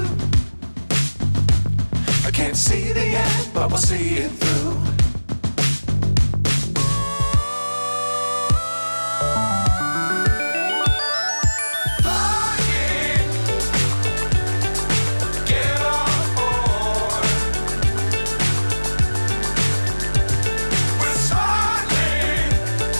I can't see the end, but we'll see it through.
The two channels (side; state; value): both; inverted; correlation -1.00